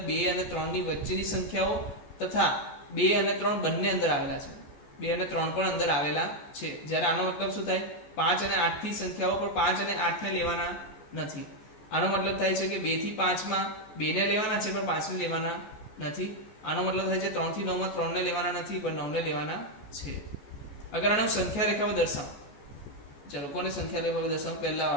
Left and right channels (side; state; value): right; late; 14 ms